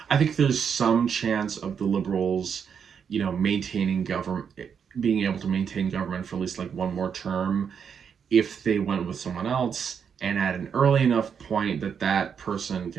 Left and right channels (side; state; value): left; quieter; 7.1 dB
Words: I think there's some chance of the Liberals, you know, maintaining government, being able to maintain government for at least like one more term if they went with someone else, and at an early enough point that that person